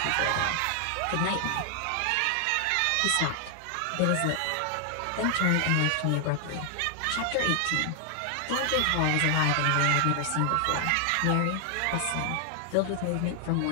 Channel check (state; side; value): different; both; correlation 0.00